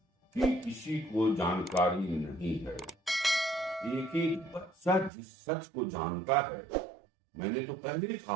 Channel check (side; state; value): left; drops out; at 5.1 s